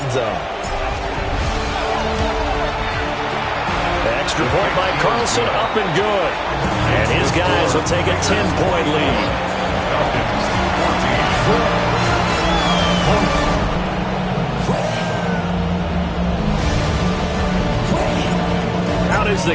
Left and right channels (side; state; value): both; identical; correlation 1.00